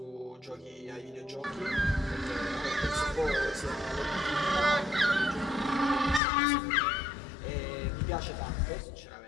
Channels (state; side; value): drops out; right; at 6.2 s